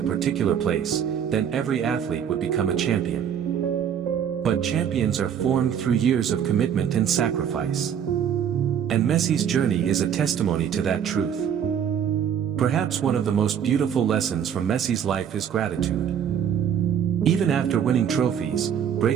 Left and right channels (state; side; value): quieter; left; 8.6 dB